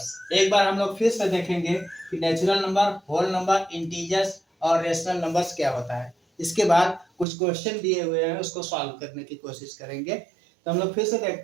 एक बार हम लोग फिर से देखेंगे कि natural number, whole number, integers और रेशनल नंबर्स क्या होता है। इसके बाद कुछ क्वेश्चन दिए हुए हैं, उसको सॉल्व करने की कोशिश करेंगे। तो हम लोग फिर से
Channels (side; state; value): left; drops out; at 7.2 s